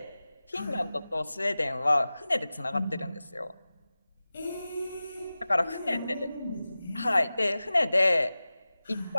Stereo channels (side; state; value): both; inverted; correlation -0.96